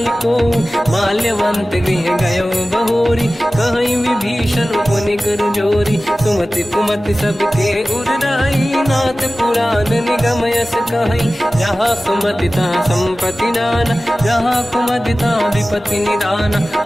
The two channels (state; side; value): normal; both; correlation 0.96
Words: को। माल्यवंत गृह गयो बहोरी, कहीं विभीषण पुनि कर जोरी। सुमति कुमति सबके उरराई, नाथ पुराण निगम यस कहीं। जहाँ सुमति तहाँ संपत्ति नाना, जहाँ कुमति तहाँ विपत्ति निदाना।